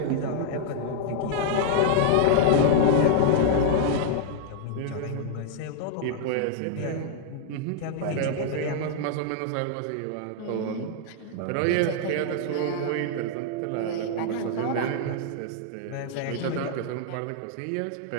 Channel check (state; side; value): different; both; correlation -0.01